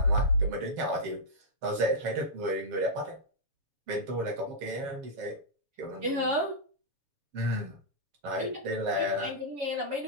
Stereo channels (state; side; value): late; left; 7.4 ms